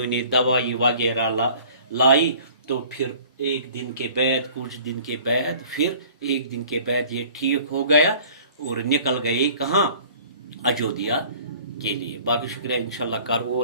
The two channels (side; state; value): both; inverted; correlation -0.49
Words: نے دوائی وغیرہ لائی تو پھر ایک دن کے بعد کچھ دن کے بعد پھر ایک دن کے بعد یہ ٹھیک ہو گیا اور نکل گئے کہاں اجودھیا کے لیے باقی شکریہ انشاءاللہ کر